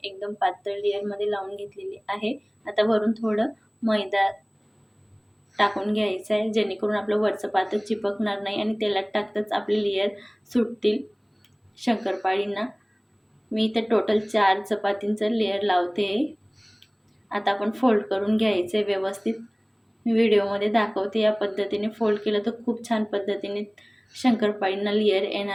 एकदम पातळ लेयरमध्ये लावून घेतलेली आहे. आता वरून थोडं मैदा टाकून घ्यायचं आहे, जेणेकरून आपलं वरचं पातं चिपकणार नाही आणि तेलात टाकताच आपले लेयर सुटतील शंकरपाळींना. मी इथे टोटल 4 चपातींचं लेयर लावते. आता आपण फोल्ड करून घ्यायचं आहे व्यवस्थित. मी व्हिडिओमध्ये दाखवते या पद्धतीने फोल्ड केलं तर खूप छान पद्धतीने शंकरपाळींना लेयर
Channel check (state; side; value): identical; both; correlation 1.00